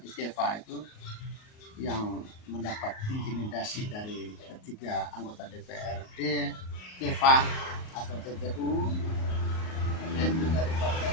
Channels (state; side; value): late; right; 38 ms